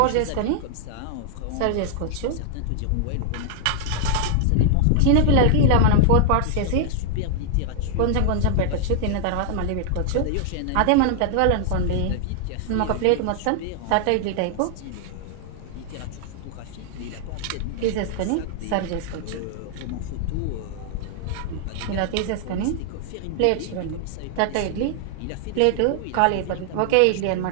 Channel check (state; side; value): different; both; correlation 0.00